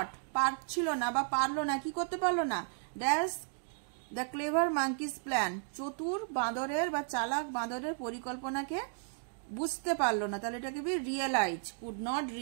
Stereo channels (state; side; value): silent; left; digital silence